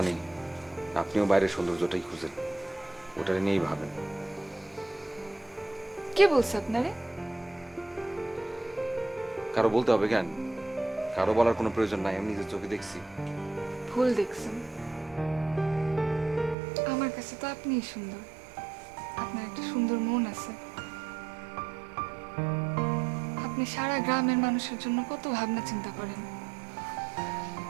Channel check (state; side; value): drops out; left; at 16.6 s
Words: আপনিও বাইরের সৌন্দর্যটাই খুঁজেন, ওটা নিয়েই ভাবেন। কে বলছে আপনারে? কারো বলতে হবে কেন? কারো বলার কোনো প্রয়োজন নাই, আমি নিজের চোখে দেখছি। ভুল দেখছেন। আমার কাছে তো আপনিই সুন্দর। আপনার একটা সুন্দর মন আছে। আপনি সারা গ্রামের মানুষের জন্য কত ভাবনা চিন্তা করেন।